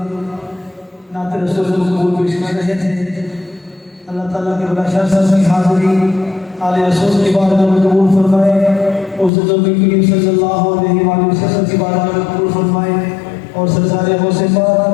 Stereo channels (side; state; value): right; drops out; at 9.3 s